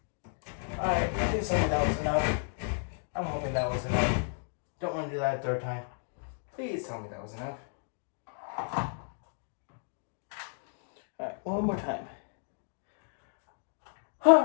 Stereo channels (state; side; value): silent; right; 56 dB below the other